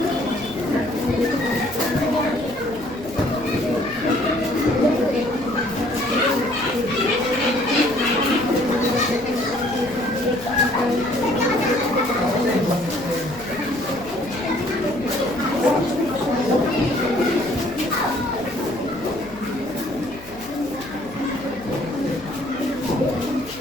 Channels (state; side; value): noise; left; hum, 19 dB below the sound